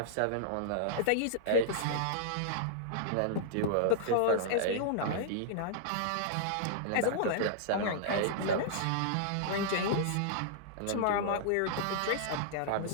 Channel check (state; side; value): different; both; correlation -0.02